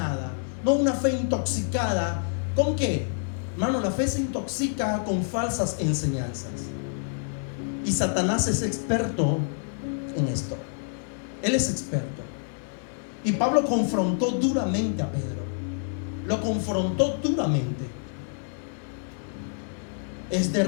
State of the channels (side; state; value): right; silent; 60 dB below the other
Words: no una fe intoxicada. ¿Con qué? Hermano, la fe se intoxica con falsas enseñanzas. Y Satanás es experto en esto. Él es experto. Y Pablo confrontó duramente a Pedro. Lo confrontó duramente. Es de